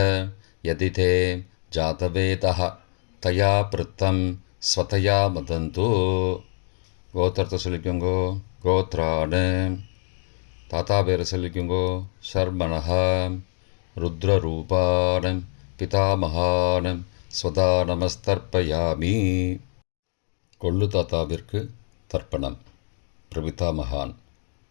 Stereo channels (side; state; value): right; silent; 58 dB below the other